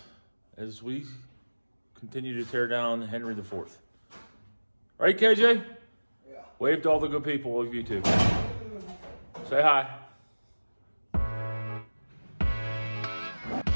as we continue to tear down Henry IV. Right, KJ? Yeah. Wave to all the good people of YouTube. Say hi.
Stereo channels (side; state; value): both; inverted; correlation -1.00